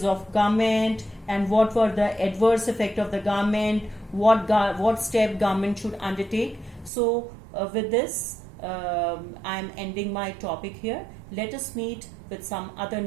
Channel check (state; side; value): drops out; left; at 6.9 s